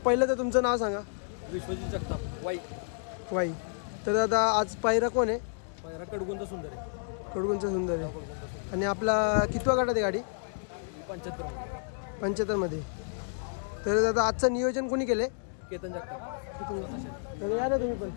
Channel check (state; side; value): silent; right; digital silence